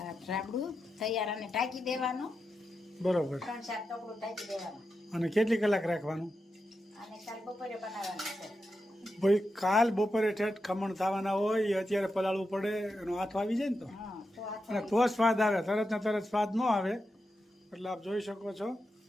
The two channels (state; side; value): normal; both; correlation 0.88